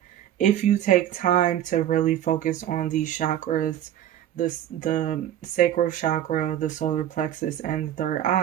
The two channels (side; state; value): left; quieter; 11.4 dB